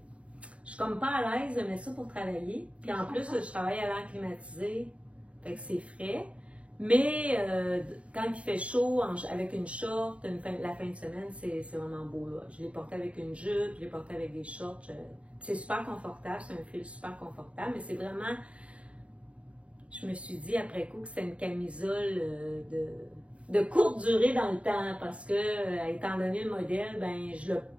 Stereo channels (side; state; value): left; late; 0.063 ms